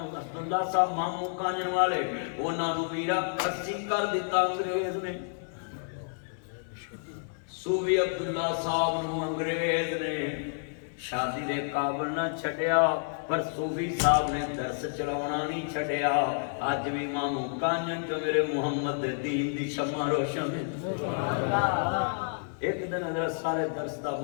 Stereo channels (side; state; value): right; silent; digital silence